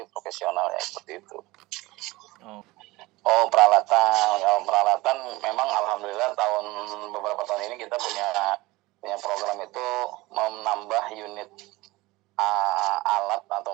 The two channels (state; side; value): quieter; left; 20.5 dB